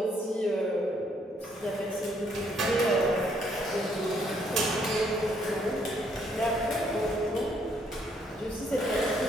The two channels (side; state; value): both; normal; correlation 0.69